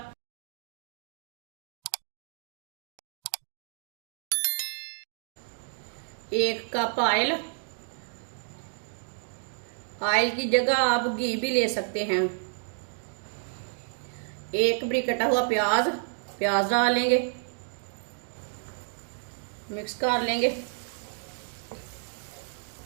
एक कप ऑयल, ऑयल की जगह आप घी भी ले सकते हैं। एक बड़ी कटा हुआ प्याज, प्याज डालेंगे, मिक्स कर लेंगे।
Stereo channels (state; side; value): silent; left; digital silence